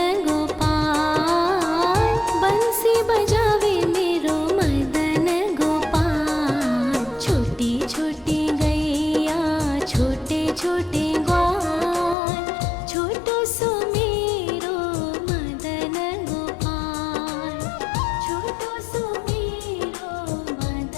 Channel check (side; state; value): right; drops out; at 12.2 s